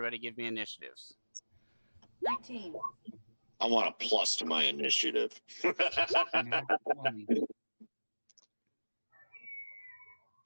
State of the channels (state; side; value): inverted; both; correlation -1.00